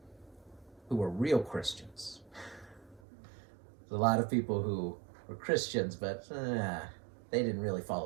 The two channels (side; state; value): left; drops out; at 3.0 s